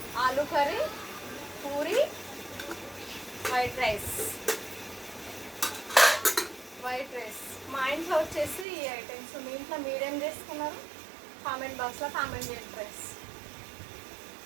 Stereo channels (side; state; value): left; drops out; at 8.7 s